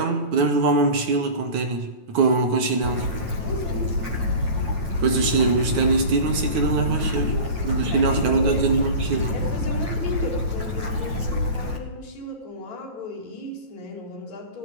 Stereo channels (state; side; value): late; left; 9.5 ms